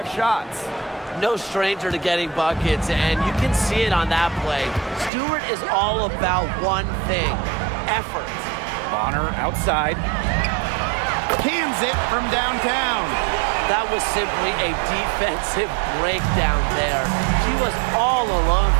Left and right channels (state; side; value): drops out; left; at 5.1 s